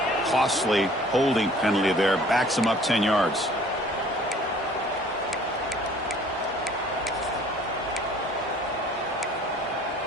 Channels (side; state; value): both; normal; correlation 0.53